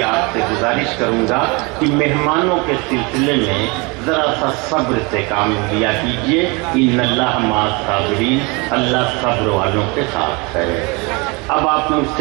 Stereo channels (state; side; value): quieter; left; 28.1 dB